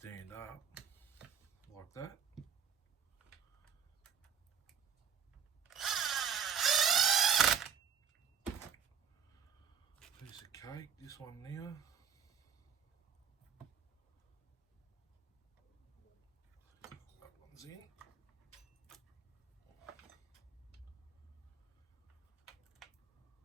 up like that. Piece of cake, this one now. That one's in.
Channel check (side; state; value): left; quieter; 7.3 dB